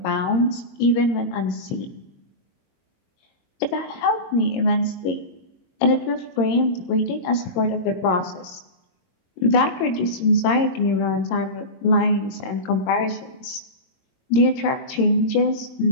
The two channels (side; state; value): right; late; 22 ms